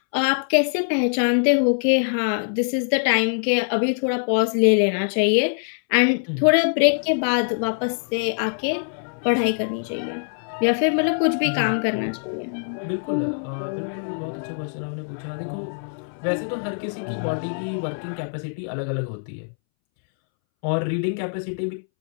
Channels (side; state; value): right; silent; 63 dB below the other